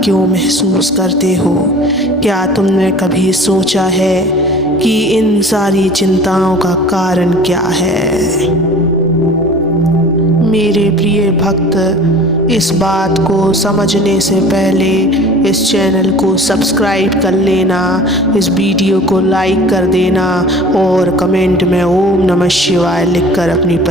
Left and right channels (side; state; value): both; normal; correlation 0.43